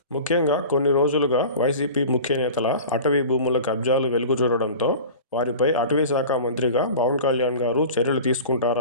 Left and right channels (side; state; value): both; inverted; correlation -0.37